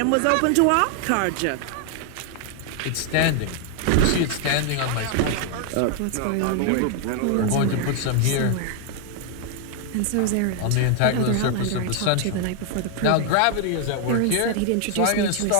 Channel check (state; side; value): different; both; correlation 0.00